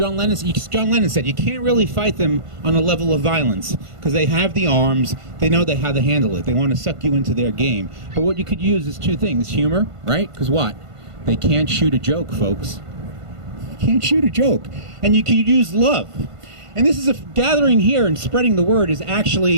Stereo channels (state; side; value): late; left; 1.5 ms